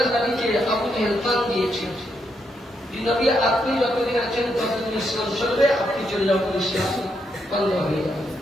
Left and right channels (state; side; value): normal; both; correlation 0.79